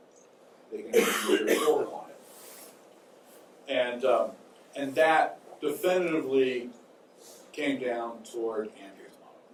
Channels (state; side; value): identical; both; correlation 1.00